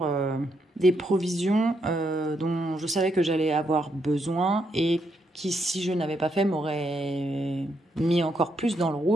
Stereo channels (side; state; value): both; normal; correlation 0.78